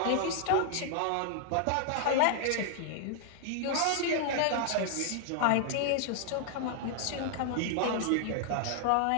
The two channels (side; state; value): both; different; correlation 0.00